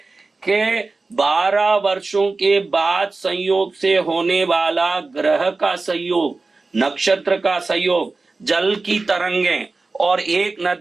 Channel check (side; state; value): left; quieter; 3.7 dB